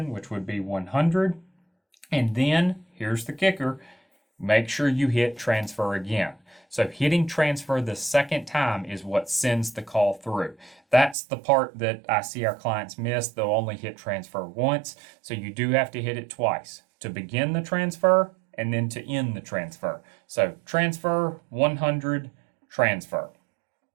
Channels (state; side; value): drops out; left; at 11.2 s